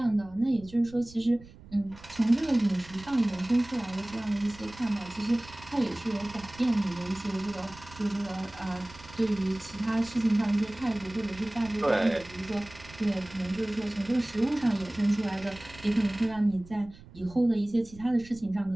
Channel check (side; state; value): right; noise; rumble, 20 dB below the sound